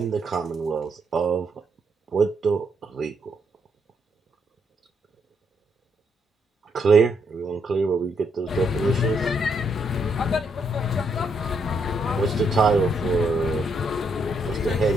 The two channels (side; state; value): both; normal; correlation 0.75